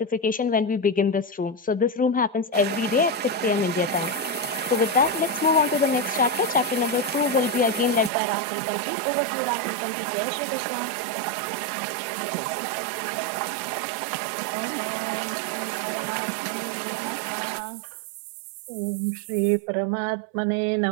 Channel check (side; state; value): left; drops out; at 8.1 s